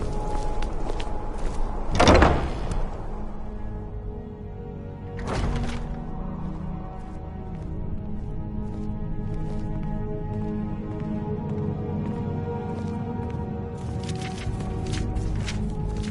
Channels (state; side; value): identical; both; correlation 1.00